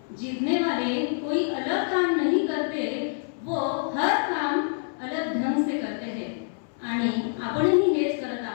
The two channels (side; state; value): right; silent; 61 dB below the other